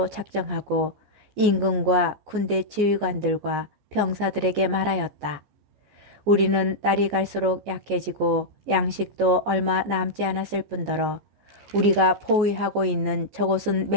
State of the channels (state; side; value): late; left; 15 ms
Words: 작정하고 임금과 군대 지휘관들과 병사들에게 말하였다. 우리는 날이 갈수록 약해지고 양식도 얼마 남지 않았을 뿐더러 우리가 포위하고 있는 저곳은